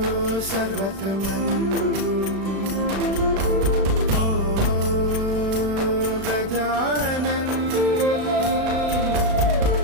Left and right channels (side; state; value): left; late; 36 ms